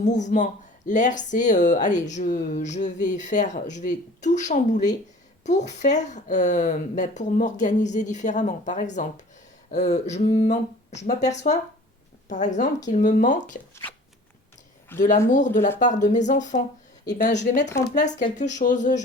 L'air, c'est, allez, je vais tout chambouler pour faire, pour m'organiser différemment. Par exemple, je m'aperçois, par exemple, qu'il me manque de l'amour de la part de mes enfants. Eh ben, je vais mettre en place quelque chose.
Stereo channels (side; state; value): both; normal; correlation 0.45